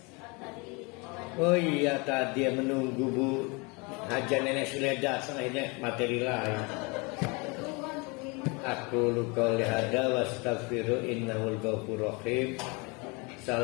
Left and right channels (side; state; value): right; quieter; 29.0 dB